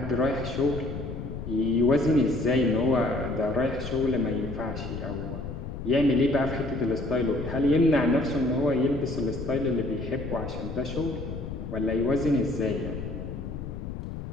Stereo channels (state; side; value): noise; left; rumble, 7 dB below the sound